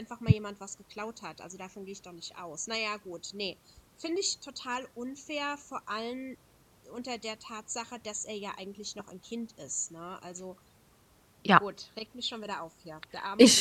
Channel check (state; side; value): identical; both; correlation 1.00